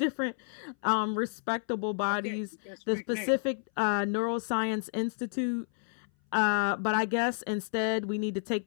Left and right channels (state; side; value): silent; right; 57 dB below the other